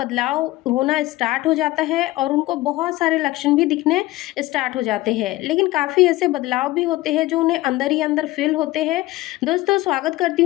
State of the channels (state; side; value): quieter; right; 18.3 dB